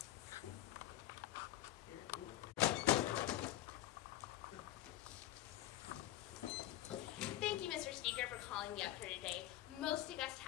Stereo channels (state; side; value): quieter; right; 14.3 dB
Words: Thank you, Mr. Speaker, for calling me up here today. Most august